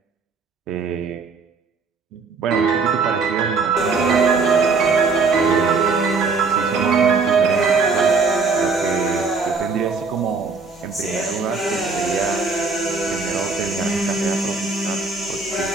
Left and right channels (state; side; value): quieter; left; 4.5 dB